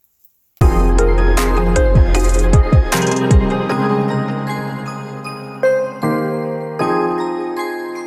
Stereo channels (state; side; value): identical; both; correlation 1.00